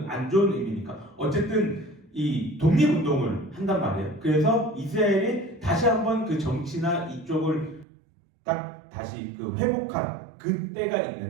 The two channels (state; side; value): drops out; left; at 7.9 s